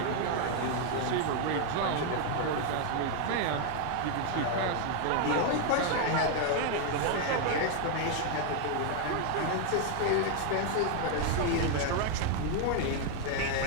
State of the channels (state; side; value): different; both; correlation 0.00